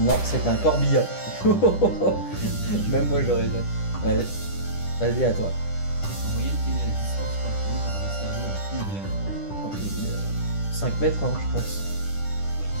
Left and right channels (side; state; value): right; late; 10 ms